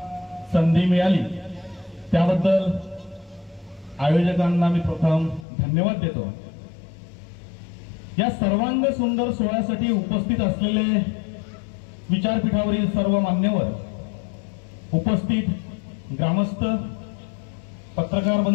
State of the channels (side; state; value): right; drops out; at 5.5 s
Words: संधी मिळाली, त्याबद्दल आयोजकांना मी प्रथम धन्यवाद देतो। या सर्वांग सुंदर सोहळ्यासाठी उपस्थित असलेले विचारपीठावरील सर्व मान्यवर, उपस्थित ग्रामस्थ, पत्रकार